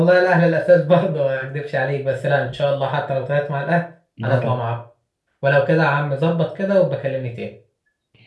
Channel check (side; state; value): both; identical; correlation 1.00